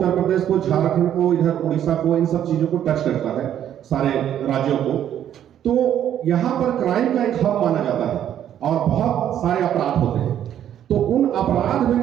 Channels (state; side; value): quieter; left; 10.4 dB